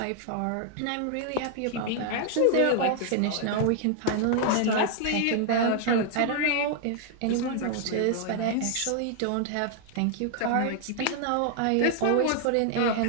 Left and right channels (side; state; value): both; different; correlation 0.00